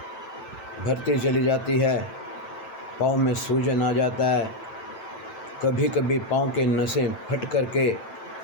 भरती चली जाती है, पाँव में सूजन आ जाता है, कभी कभी पाँव के नसें फट करके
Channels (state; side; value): late; right; 9.0 ms